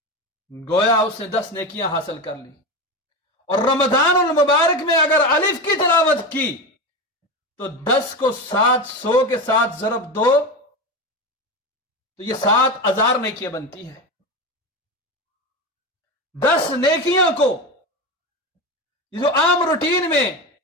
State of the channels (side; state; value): both; normal; correlation 0.20